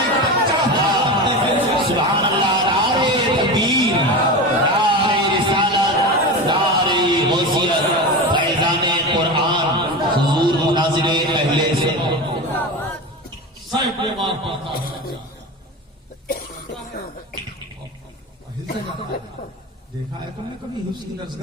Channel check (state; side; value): normal; both; correlation 0.25